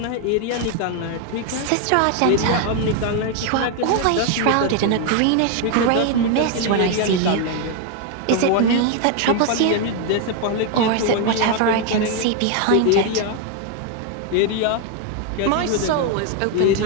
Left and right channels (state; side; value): different; both; correlation 0.01